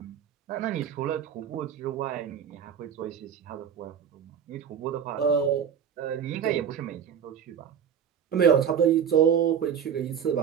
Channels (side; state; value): left; quieter; 8.1 dB